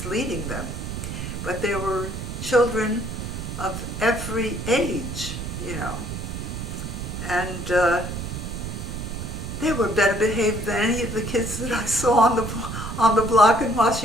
leading them, but there were children of every age, and they were better behaved than any of the kids that I saw on the block in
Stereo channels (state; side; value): noise; right; rumble, 6 dB below the sound